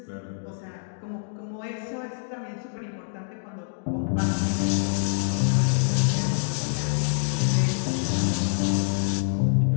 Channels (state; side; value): silent; right; digital silence